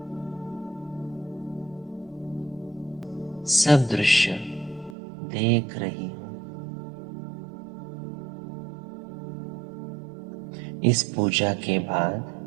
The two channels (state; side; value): drops out; left; at 5.0 s